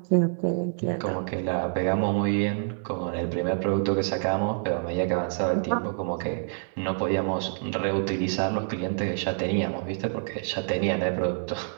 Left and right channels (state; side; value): silent; left; digital silence